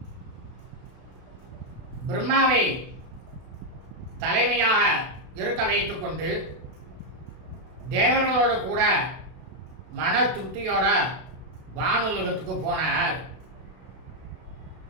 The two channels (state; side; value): late; left; 32 ms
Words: பிரம்மாவை தலைமையாக இருக்க வைத்துக் கொண்டு தேவர்களோடு கூட மன திருப்தியோட வானுலகத்துக்கு போனார்.